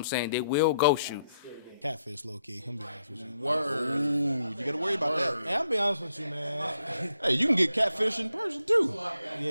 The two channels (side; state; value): both; inverted; correlation -0.78